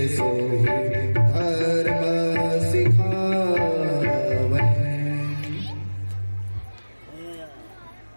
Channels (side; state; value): both; inverted; correlation -1.00